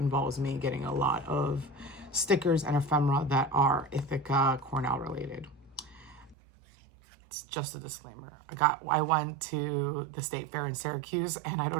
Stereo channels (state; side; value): drops out; left; at 6.4 s